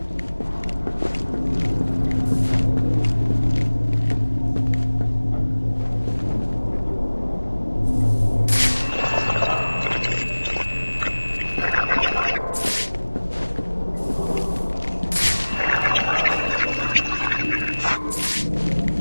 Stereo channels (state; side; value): inverted; both; correlation -1.00